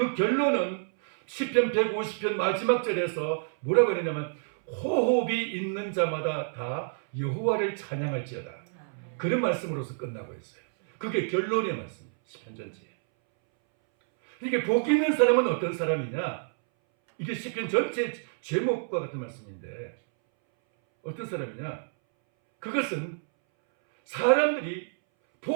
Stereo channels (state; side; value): silent; left; 59 dB below the other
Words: 결론은 시편 150편 마지막 절에서 뭐라고 했냐면 호흡이 있는 자마다 다 여호와를 찬양할지어다. 그런 말씀으로서 끝나고 있어요. 그게 결론의 말씀이에요. 시편 전체에. 이게 복 있는 사람은 어떤 사람이냐? 이게 시편 전체 제목과 같은 말씀인데 어떤 사람이냐? 그것은 사람들이